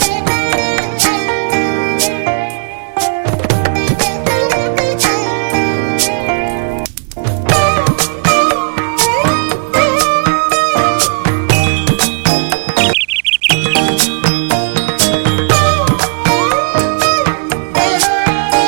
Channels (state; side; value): silent; left; digital silence